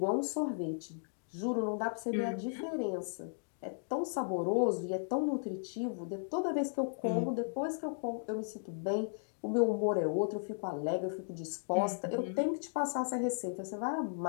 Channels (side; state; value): right; silent; digital silence